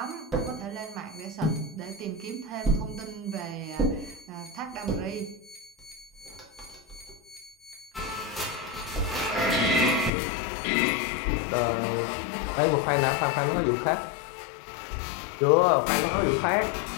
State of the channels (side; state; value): right; drops out; at 10.1 s